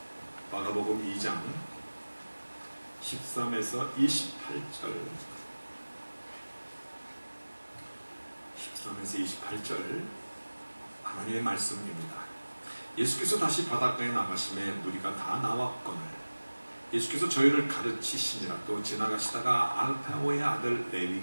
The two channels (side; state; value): both; inverted; correlation -1.00